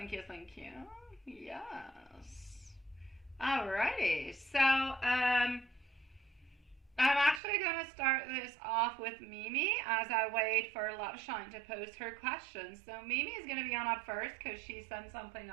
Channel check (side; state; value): left; drops out; at 7.4 s